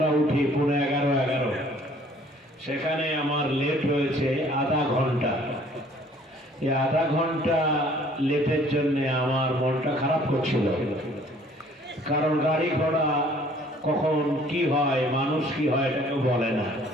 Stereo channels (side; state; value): both; normal; correlation 0.56